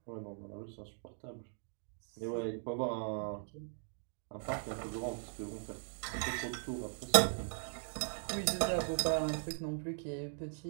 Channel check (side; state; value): left; silent; 52 dB below the other